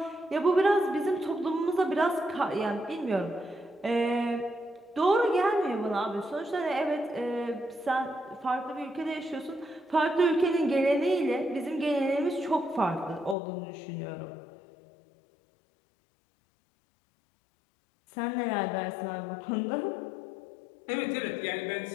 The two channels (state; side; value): drops out; right; at 13.4 s